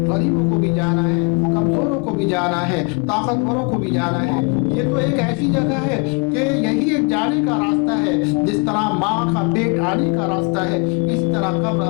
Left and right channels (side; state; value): right; quieter; 32.8 dB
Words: غریبوں کو بھی جانا ہے، کمزوروں کو بھی جانا ہے، طاقتوروں کو بھی جانا ہے۔ یہ تو ایک ایسی جگہ ہے کہ یہی ایک جانے کا راستہ ہے، جس طرح ماں کا پیٹ آنے کا راستہ ہے، اس طرح قبر